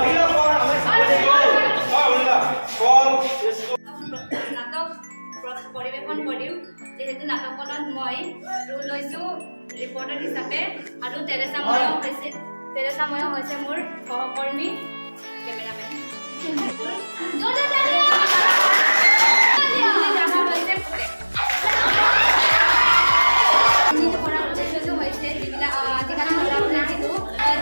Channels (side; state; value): both; inverted; correlation -1.00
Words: পৰিৱেশন কৰিম, যেহেতু নাটকখনত মই ৰোল লৈছোঁ ৰিপৰ্টাৰ হিচাপে, আৰু তেৰেছা ময়ো হৈছে মোৰ সহকৰ্মী কেমেৰামেন।